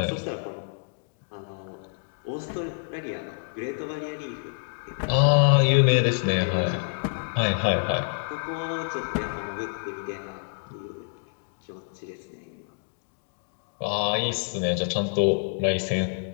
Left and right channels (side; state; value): right; silent; digital silence